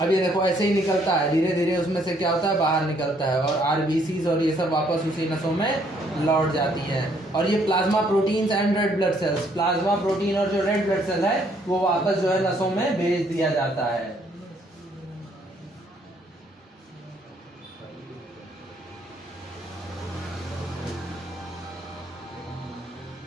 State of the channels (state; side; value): normal; both; correlation 0.67